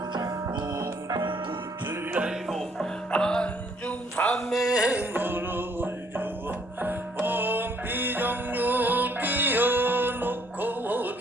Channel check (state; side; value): normal; both; correlation 0.65